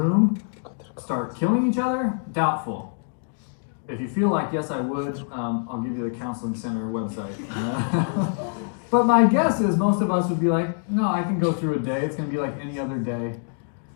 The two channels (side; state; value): right; silent; digital silence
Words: start killing each other? Doubtful. If you feel like, yes, I would, I'll give you the counseling center website. But my guess is most of us would be like, no, I can go through a day. It's going to be like any other day.